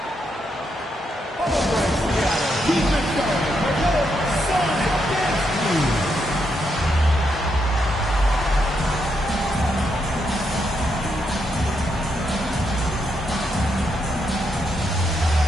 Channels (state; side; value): normal; both; correlation 0.80